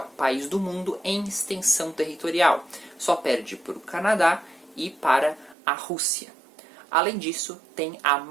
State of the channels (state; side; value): drops out; left; at 5.6 s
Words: país do mundo em extensão territorial. Só perde para o Canadá e para a Rússia. Além disso, tem a